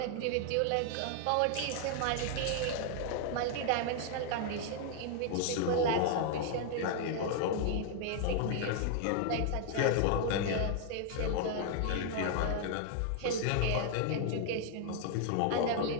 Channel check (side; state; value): both; different; correlation 0.00